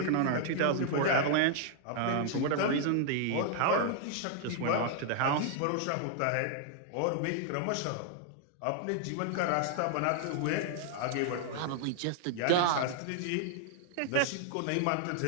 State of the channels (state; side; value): different; both; correlation -0.01